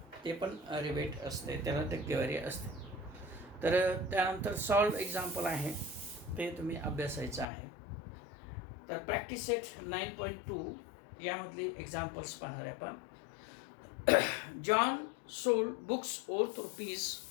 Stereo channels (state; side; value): drops out; right; at 7.5 s